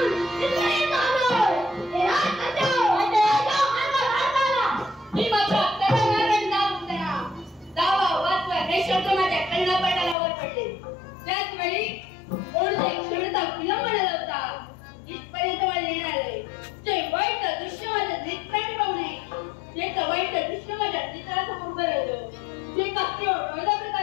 त्याच वेळी कोणते क्षणता विलंबन लावता इथपर्यंत मला येणार आहे ते वाईट दृश्य माझ्या नेत्राने पाहू नये ते वाईट दृश्य माझ्या चित्रासमोर उभं राहिलं ते कसे वेगळ्या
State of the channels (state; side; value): drops out; right; at 10.2 s